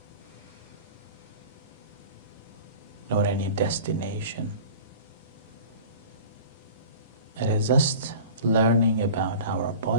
nor any destination. It is just learning about our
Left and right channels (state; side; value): inverted; both; correlation -0.39